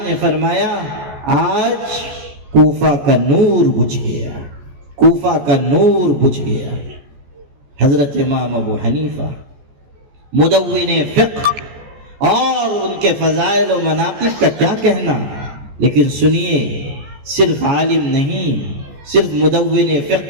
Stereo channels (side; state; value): left; late; 14 ms